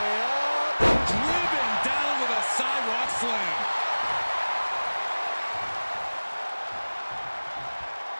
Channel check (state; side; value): inverted; both; correlation -1.00